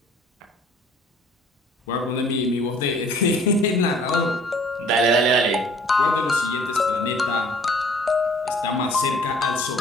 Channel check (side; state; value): both; normal; correlation 0.54